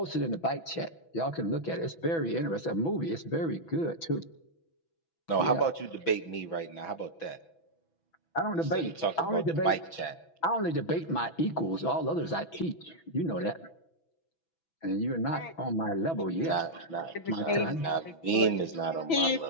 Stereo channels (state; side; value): late; right; 6.1 ms